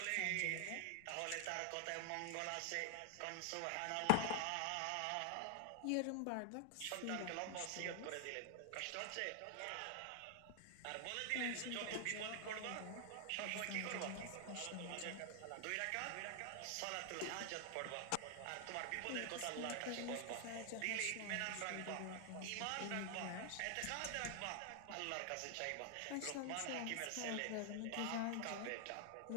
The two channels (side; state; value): both; different; correlation 0.00